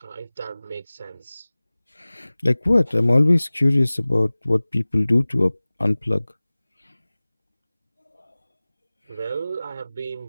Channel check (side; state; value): both; inverted; correlation -0.99